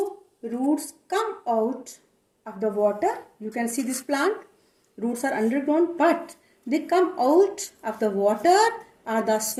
roots come out of the water. You can see this plant. Roots are underground, but they come out of the water or the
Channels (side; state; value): both; identical; correlation 1.00